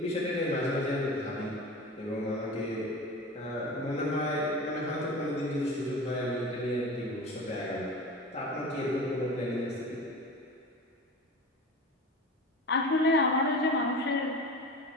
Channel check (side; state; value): both; normal; correlation 0.33